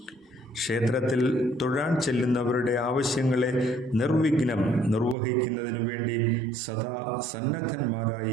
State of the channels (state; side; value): drops out; left; at 5.2 s